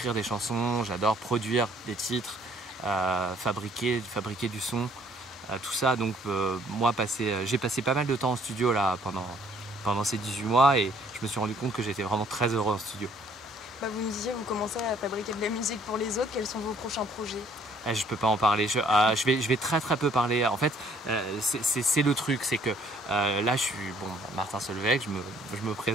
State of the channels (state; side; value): normal; both; correlation 0.61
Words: des chansons, j'adore produire des titres, fabriquer du son, tout ça. Donc moi, j'ai passé pas mal de temps en studio là pendant ces 18 mois et je me suis rendu compte que j'étais vraiment très heureux en studio. Vous me disiez, vous commencez à fabriquer de la musique pour les autres. Quels sont vos prochains projets? Je peux pas en parler, je vais très peu parler. En fait, c'est le truc, c'est que là je suis Martin Solveig, je me